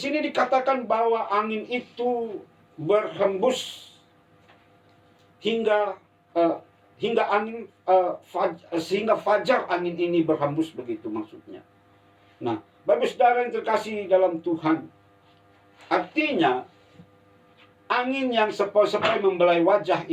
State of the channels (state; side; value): identical; both; correlation 1.00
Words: dikatakan bahwa angin itu berhembus hingga sehingga fajar angin ini berhembus, begitu maksudnya. Nah, Bapak Saudara yang terkasih dalam Tuhan, artinya angin yang sepoi-sepoi membelai wajah